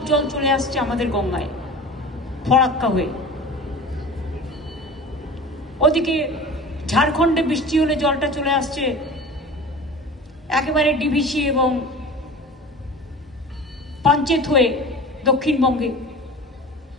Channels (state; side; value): normal; both; correlation 0.37